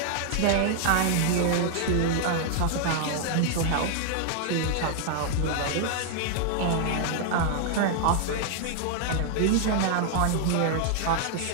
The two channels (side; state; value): both; different; correlation 0.00